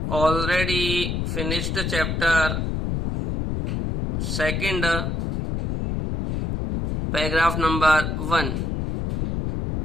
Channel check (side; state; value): left; noise; rumble, 1 dB below the sound